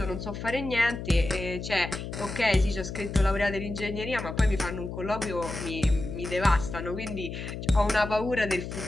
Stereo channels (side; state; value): left; noise; hum, 7 dB below the sound